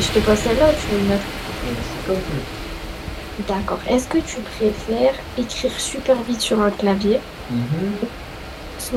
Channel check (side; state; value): both; identical; correlation 1.00